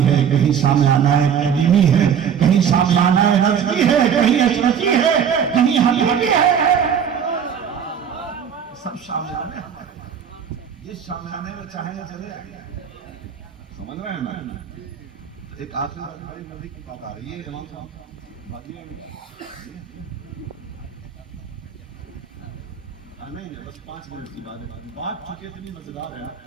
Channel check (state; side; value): quieter; left; 7.8 dB